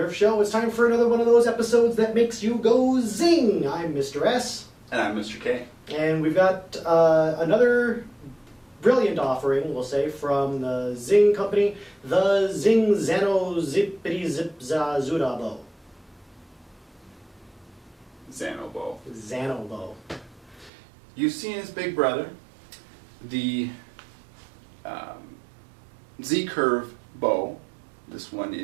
Show. It's time for another one of those episodes that makes you go zing. I'm Mr. S. And I'm Mr. K. And we've got another brilliant offering, we'll say, from the Zing company, the Zing Zano Bow. Zano Bow. Zano Bow. You've seen his big brother, the Z-Curve bow. This one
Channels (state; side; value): drops out; left; at 20.7 s